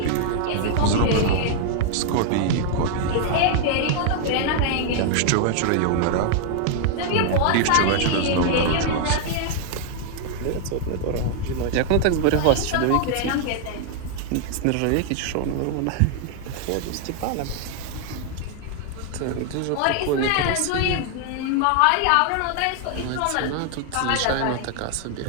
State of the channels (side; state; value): both; different; correlation 0.00